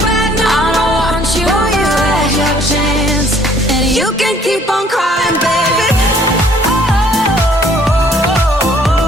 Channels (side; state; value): both; normal; correlation 0.60